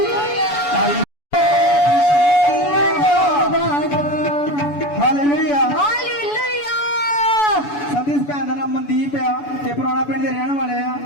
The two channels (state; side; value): late; right; 7.0 ms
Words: ਸੰਦੀਪ ਭੈਣ ਦਾ ਨਾਮ ਮਨਦੀਪ ਆ ਤੇ ਪੁਰਾਣਾ ਪਿੰਡ ਦੇ ਰਹਿਣ ਵਾਲੇ ਆ।